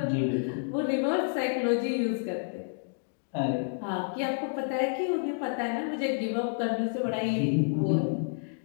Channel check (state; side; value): silent; right; digital silence